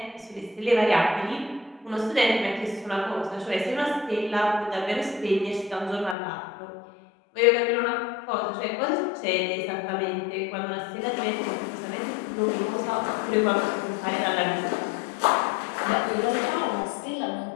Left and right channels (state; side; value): drops out; right; at 6.2 s